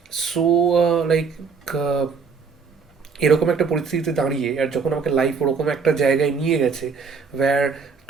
সো লাইক এরকম একটা পরিস্থিতিতে দাঁড়িয়ে, আর যখন আমাকে লাইফ ওরকম একটা জায়গায় নিয়ে গেছে, where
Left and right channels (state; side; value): quieter; left; 5.5 dB